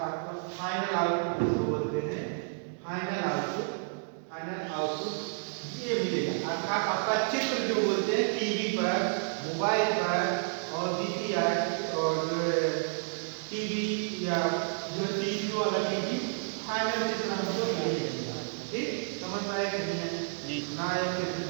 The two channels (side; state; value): left; silent; digital silence